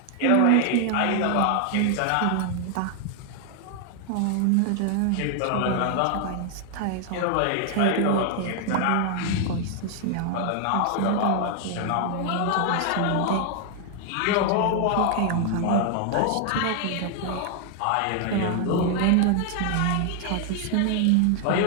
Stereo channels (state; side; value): different; both; correlation 0.00